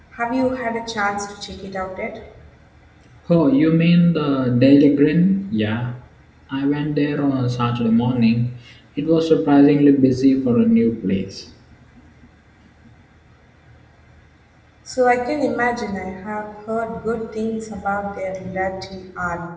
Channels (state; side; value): identical; both; correlation 1.00